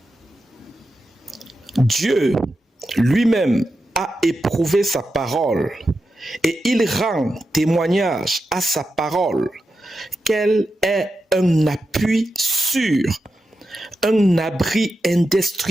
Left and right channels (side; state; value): both; normal; correlation 0.89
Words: Dieu lui-même a éprouvé sa parole et il rend témoignage à sa parole qu'elle est un appui sûr, un abri